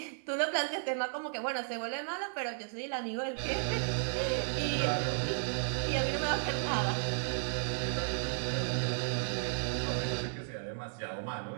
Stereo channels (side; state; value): left; silent; digital silence